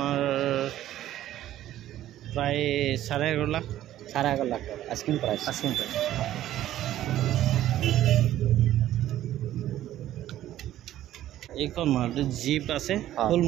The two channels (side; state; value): left; quieter; 13.1 dB